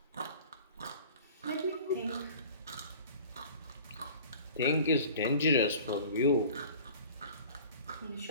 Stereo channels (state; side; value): inverted; both; correlation -0.44